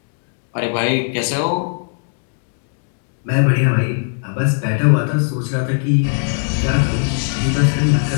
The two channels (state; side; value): silent; right; 67 dB below the other